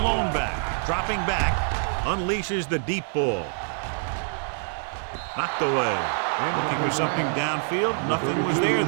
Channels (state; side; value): silent; left; 61 dB below the other